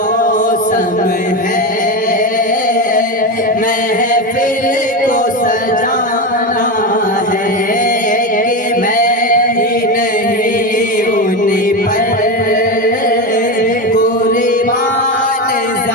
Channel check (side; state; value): both; normal; correlation 0.16